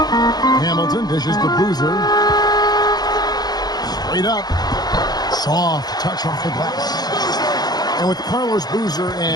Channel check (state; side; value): late; right; 0.19 ms